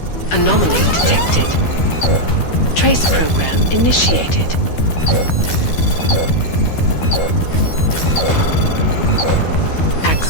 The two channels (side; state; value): right; late; 12 ms